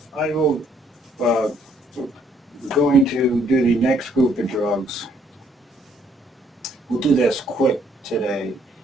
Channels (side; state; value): both; normal; correlation 0.67